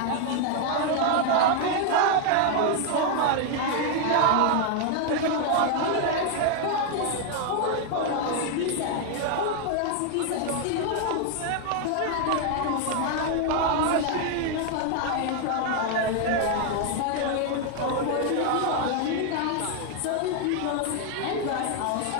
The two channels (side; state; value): both; different; correlation 0.00